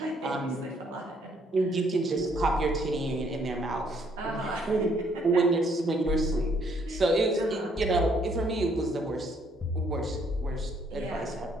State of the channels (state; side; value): normal; both; correlation 0.67